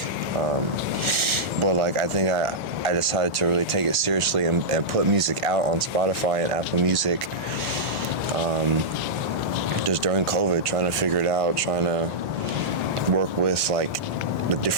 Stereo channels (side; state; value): both; normal; correlation -0.12